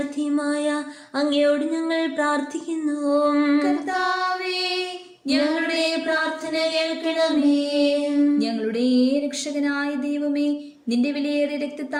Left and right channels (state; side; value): identical; both; correlation 1.00